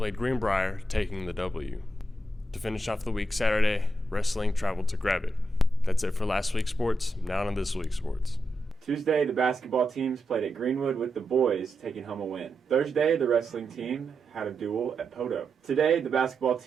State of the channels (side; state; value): both; normal; correlation 0.86